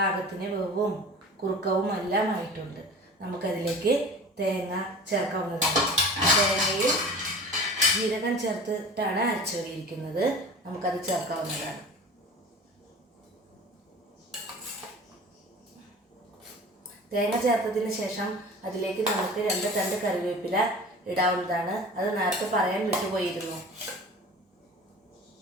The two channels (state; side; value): normal; both; correlation 0.39